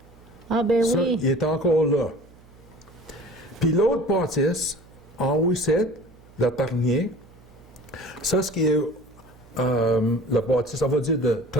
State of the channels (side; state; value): right; noise; hum, 25 dB below the sound